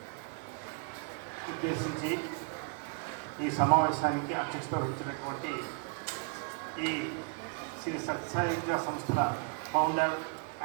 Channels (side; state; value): left; quieter; 36.7 dB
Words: ఉద్దేశించి ఈ సమావేశానికి అధ్యక్షత వహించినటువంటి ఈ శ్రీ సత్యసాయి విద్యా సంస్థల ఫౌండర్